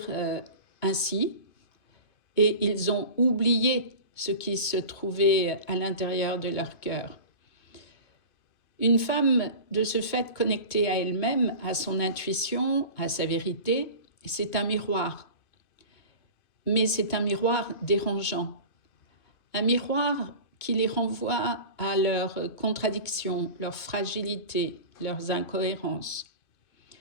ainsi et ils ont oublié ce qui se trouvait à l'intérieur de leur cœur. Une femme, de ce fait connectée à elle-même, à son intuition, à sa vérité, c'est un miroir. Mais c'est un miroir dérangeant. Un miroir qui les renvoie à leurs contradictions, leurs fragilités, leurs incohérences.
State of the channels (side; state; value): right; late; 2.2 ms